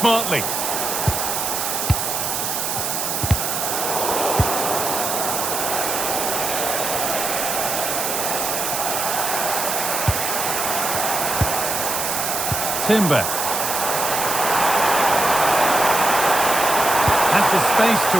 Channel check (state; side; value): noise; right; hiss, 1 dB below the sound